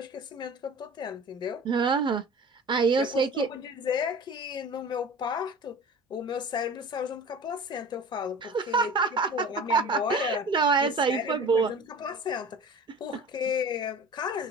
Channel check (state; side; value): normal; both; correlation 0.39